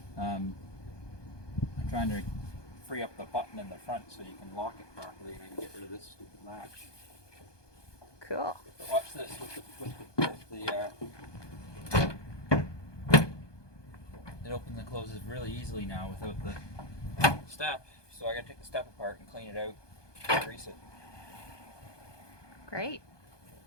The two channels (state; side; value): late; right; 1.2 ms